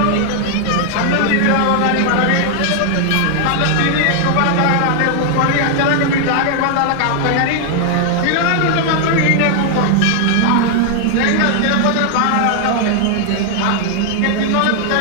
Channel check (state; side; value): different; both; correlation 0.00